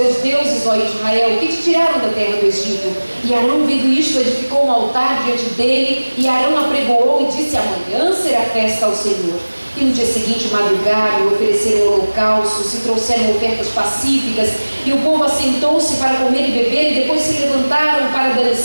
deuses, ó Israel, que te tiraram da terra do Egito. E Arão, vendo isto, edificou um altar diante dele, e Arão apregoou e disse: amanhã será festa ao Senhor. E no dia seguinte madrugaram e ofereceram holocaustos e trouxeram ofertas pacíficas, e o povo assentou-se para comer e beber, e depois se levantaram para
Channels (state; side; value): inverted; both; correlation -1.00